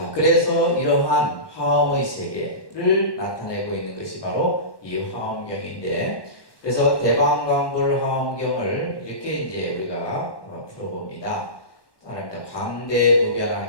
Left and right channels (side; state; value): right; late; 1.1 ms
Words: 그래서 이러한 화엄의 세계를 나타내고 있는 것이 바로 이 화엄경인데, 그래서 대방광불 화엄경을 이렇게 이제 우리가 풀어봅니다. 따라합니다.